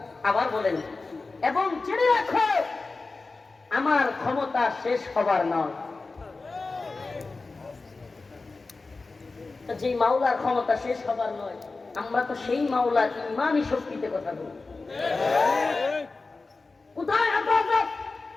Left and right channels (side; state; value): right; quieter; 3.8 dB